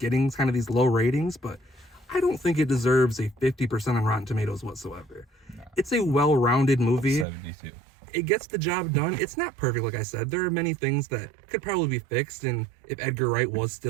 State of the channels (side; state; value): left; drops out; at 7.2 s